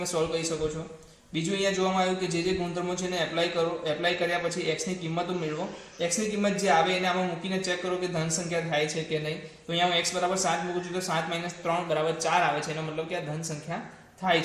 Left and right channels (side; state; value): both; identical; correlation 1.00